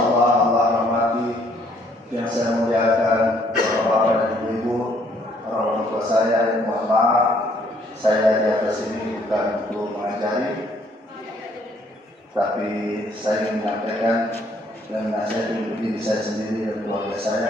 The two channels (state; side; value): normal; both; correlation 0.65